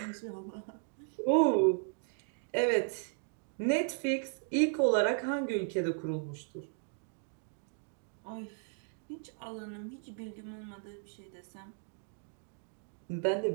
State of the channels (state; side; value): silent; left; 54 dB below the other